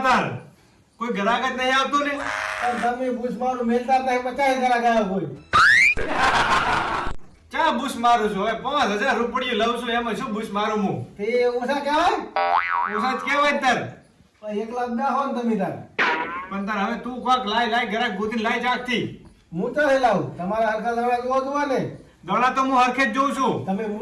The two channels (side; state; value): both; identical; correlation 1.00